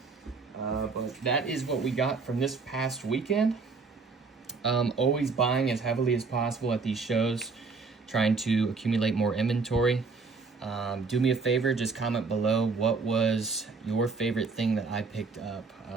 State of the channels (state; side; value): quieter; left; 4.5 dB